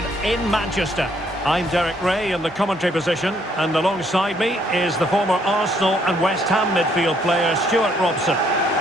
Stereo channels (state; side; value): normal; both; correlation 0.68